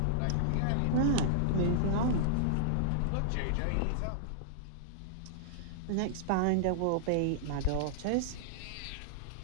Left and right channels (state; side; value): different; both; correlation -0.01